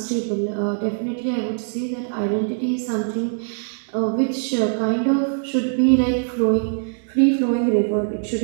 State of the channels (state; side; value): silent; left; 64 dB below the other